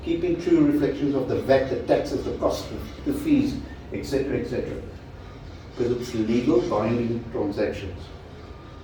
keeping true reflections of the VAT, the taxes, the costs, the fees, etc., etc. Because it's legal binding transactions.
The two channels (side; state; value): both; identical; correlation 1.00